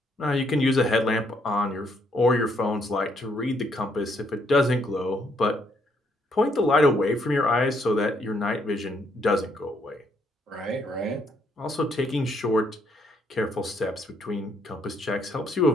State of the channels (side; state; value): both; normal; correlation 0.71